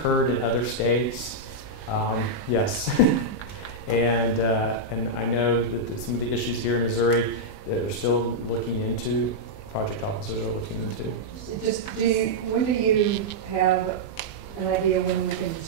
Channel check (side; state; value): right; late; 20 ms